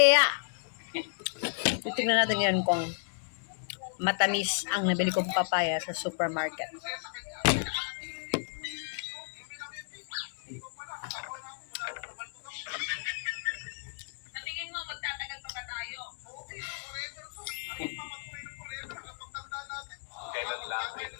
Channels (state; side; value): silent; right; digital silence